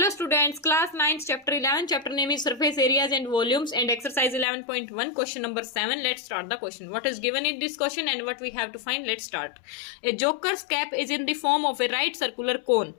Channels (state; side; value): drops out; right; at 4.5 s